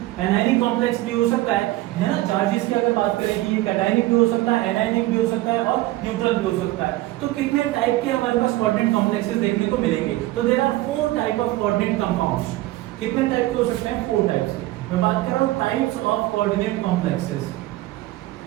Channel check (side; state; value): left; quieter; 17.5 dB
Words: कॉम्प्लेक्स भी हो सकता है ना। चार्जेस की अगर बात करें कि ये कैटायनिक भी हो सकता है, एनायनिक भी हो सकता है और न्यूट्रल भी हो सकता है। तो कितने टाइप के हमारे पास कोऑर्डिनेट कॉम्प्लेक्सेस देखने को मिलेंगे? तो there are 4 type of coordinate compounds. कितने टाइप के हो सकते हैं? 4 टाइप्स के। मैं बात कर रहा हूं types of coordinate complexes.